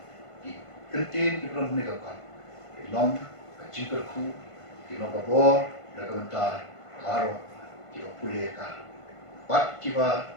kentin ibron ni kot. Long kecingkerku long kabor nagabenta baro iba pulih ka. Bat kiba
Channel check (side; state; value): right; late; 1.5 ms